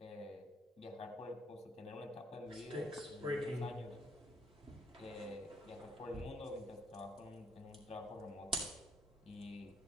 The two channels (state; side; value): normal; both; correlation 0.67